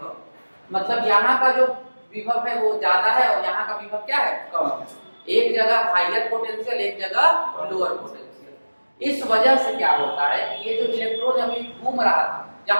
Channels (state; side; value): inverted; both; correlation -1.00